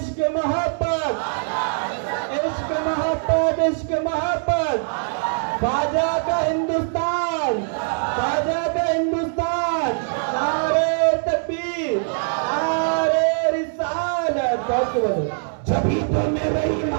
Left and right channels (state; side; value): silent; left; digital silence